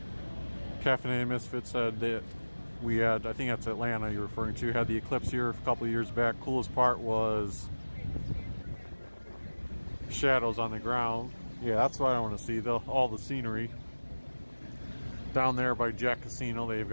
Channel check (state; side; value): inverted; both; correlation -1.00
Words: Caffeinated Misfit said that we had, I think that's Atlanta you're referring to, had the eclipse here a couple of years back. Coolest part was shadows on the ground. Yeah, that's what I want to see, all the scenery. Down there by Jack Casino, they've